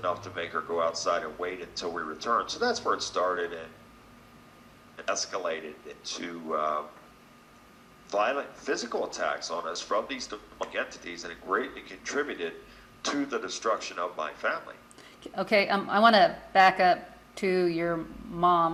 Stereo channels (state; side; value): identical; both; correlation 1.00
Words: to make her go outside and wait until we returned. So that's where it started, and it escalated into violent physical attacks on us from these demonic entities, and it greatly contributed to the destruction of my family. Okay, I want to back up to your